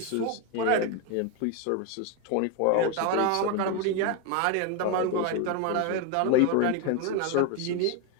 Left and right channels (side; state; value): both; different; correlation 0.02